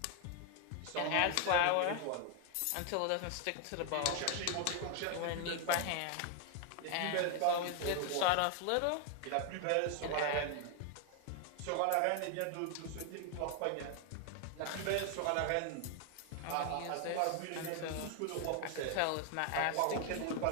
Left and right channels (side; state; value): both; different; correlation 0.00